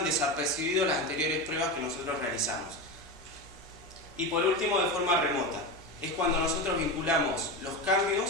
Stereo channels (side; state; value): right; noise; hum, 20 dB below the sound